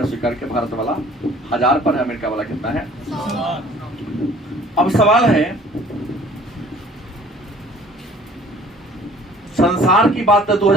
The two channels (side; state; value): both; normal; correlation 0.52